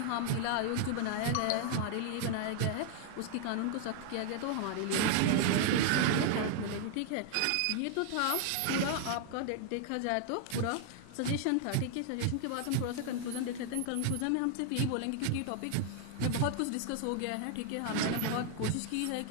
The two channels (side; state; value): both; different; correlation 0.00